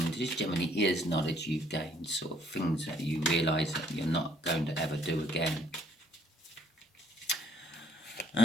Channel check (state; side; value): normal; both; correlation 0.64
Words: It just generally is knowledge you've gained, sort of things that you realise that you're not going to ever do again.